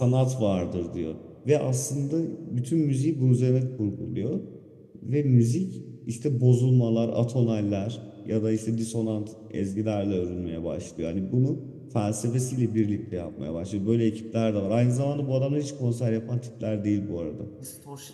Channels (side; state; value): both; identical; correlation 1.00